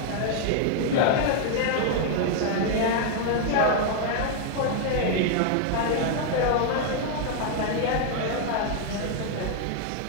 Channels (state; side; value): different; both; correlation 0.00